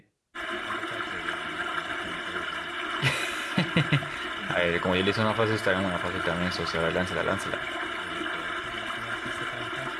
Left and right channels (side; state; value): both; identical; correlation 1.00